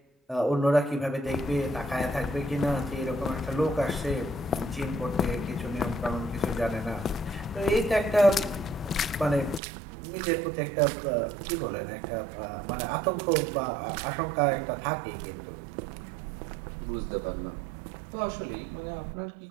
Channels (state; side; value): drops out; left; at 9.6 s